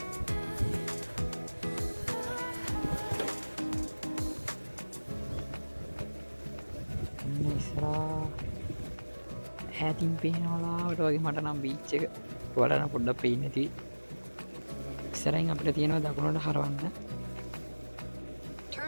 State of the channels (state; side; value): inverted; both; correlation -1.00